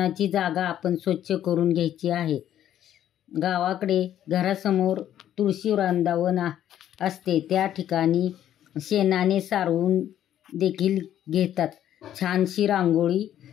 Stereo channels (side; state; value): right; quieter; 11.2 dB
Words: जागा आपण स्वच्छ करून घ्यायची आहे. गावाकडे घरासमोर तुळशी वृंदावन असते, त्या ठिकाणी शेणाने सारवून देखील घेतात. छानशी रांगोळी